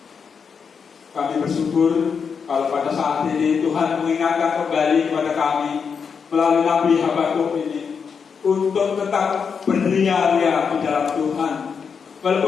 kami bersyukur kalau pada saat ini Tuhan mengingatkan kembali kepada kami melalui Nabi Habakuk ini untuk tetap beria-ria di dalam Tuhan.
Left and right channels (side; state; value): right; quieter; 6.2 dB